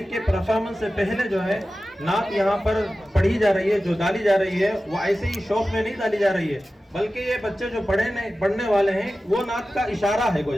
परफॉर्मेंस से पहले जो है नात यहाँ पर पढ़ी जा रही है, जो डाली जा रही है वो ऐसे ही शौक में नहीं डाली जा रही है, बल्कि ये बच्चे जो पढ़ने वाले हैं वो नात का इशारा है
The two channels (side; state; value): both; normal; correlation 0.95